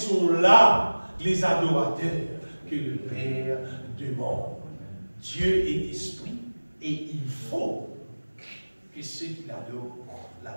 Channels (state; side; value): inverted; both; correlation -1.00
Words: là les adorateurs que le Père demande. Dieu est esprit, et il faut que ceux qui l'adorent